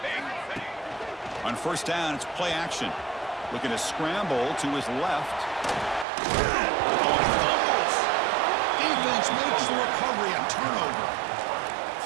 On first down, it's play action. Looking to scramble to his left. Defense makes the recovery and turnover.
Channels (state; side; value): drops out; left; at 6.1 s